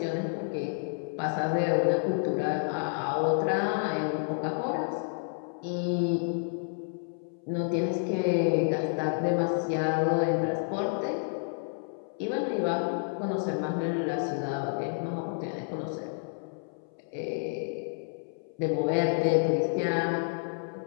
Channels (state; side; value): silent; right; 58 dB below the other